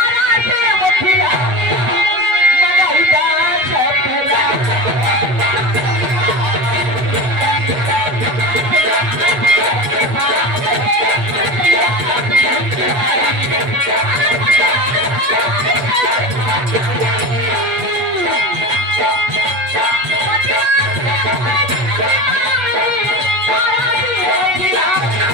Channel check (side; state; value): left; late; 8.5 ms